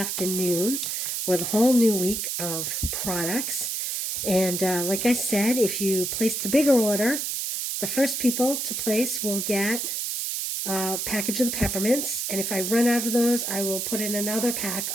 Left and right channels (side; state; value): right; noise; hiss, 2 dB below the sound